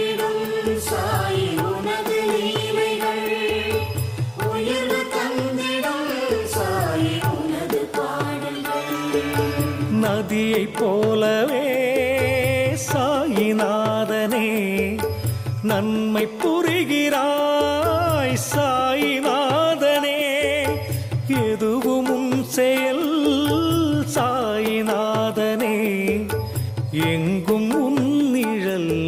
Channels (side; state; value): both; identical; correlation 1.00